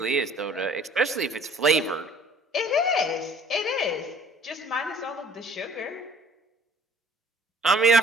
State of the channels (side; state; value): both; normal; correlation 0.53